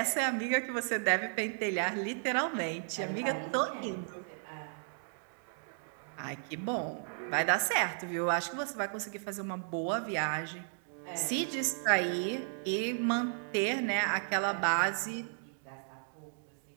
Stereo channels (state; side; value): silent; left; digital silence